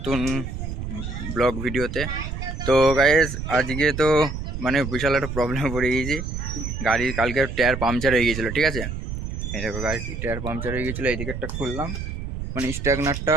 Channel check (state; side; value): noise; right; rumble, 6 dB below the sound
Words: ব্লগ ভিডিওতে। তো গাইজ আজকে তো মানে বিশাল একটা প্রবলেমে পড়ে গিয়েছি। গাড়ির কালকে টায়ার পাংচার হয়ে গিয়েছিলো, ঠিক আছে। এই দেখো গাড়ির টায়ার পাংচার হয়ে গিয়েছিলো, এই দিকেরটা খুললাম, মানে স্ট্যাগনারটা,